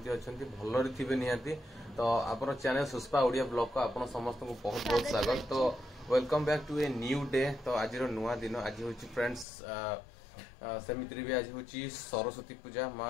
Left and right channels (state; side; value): drops out; right; at 9.5 s